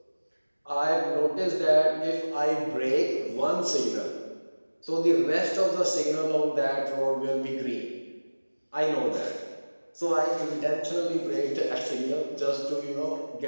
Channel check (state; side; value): inverted; both; correlation -1.00